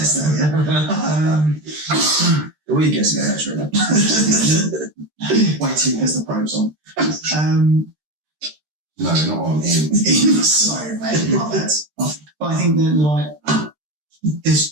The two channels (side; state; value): left; late; 13 ms